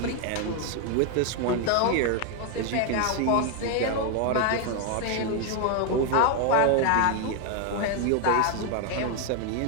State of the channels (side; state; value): both; different; correlation 0.01